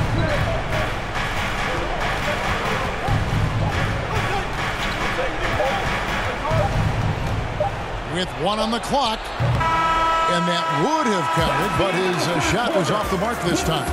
With 1 on the clock, and that would have counted, but his shot was off the mark this time.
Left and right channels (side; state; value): both; identical; correlation 1.00